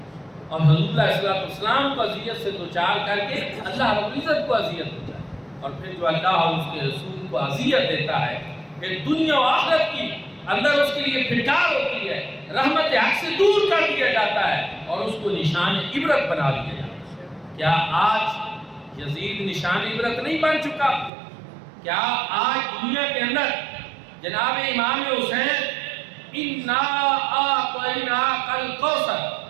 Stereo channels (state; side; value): drops out; left; at 21.1 s